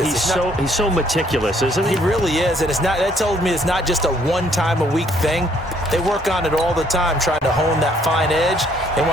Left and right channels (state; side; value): normal; both; correlation 0.65